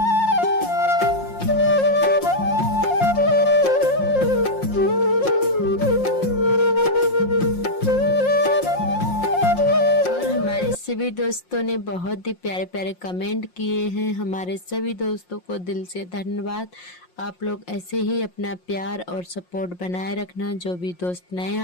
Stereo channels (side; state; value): right; late; 5.6 ms